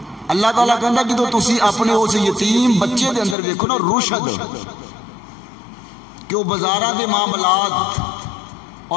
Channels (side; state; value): right; drops out; at 3.4 s